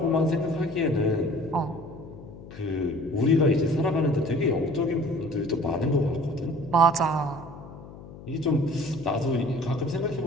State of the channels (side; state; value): left; noise; hum, 16 dB below the sound